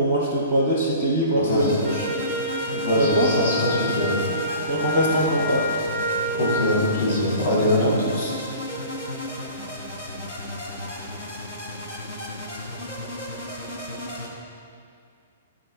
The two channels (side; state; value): both; inverted; correlation -0.42